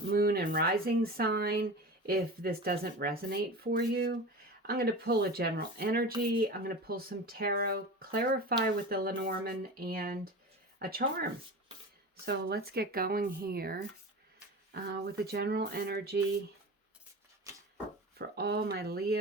Moon and Rising sign if this doesn't resonate for you. I'm going to pull a general energy. I'm going to pull some tarot, clarify with the Lenormand, and a charm. So let's get going here with the general energy for all my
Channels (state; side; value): normal; both; correlation 0.31